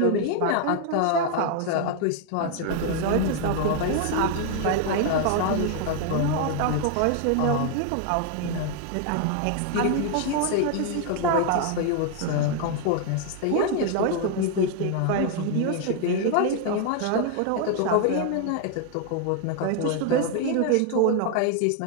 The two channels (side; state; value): both; different; correlation 0.00